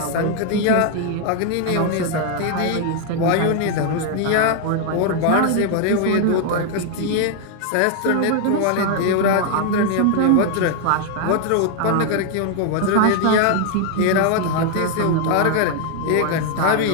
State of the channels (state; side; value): different; both; correlation 0.00